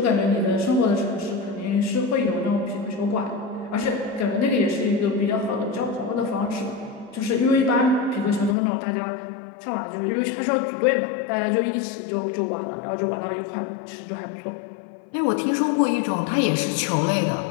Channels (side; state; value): right; drops out; at 8.6 s